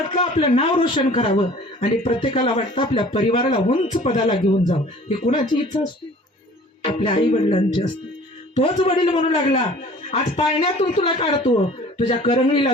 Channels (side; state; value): both; normal; correlation 0.48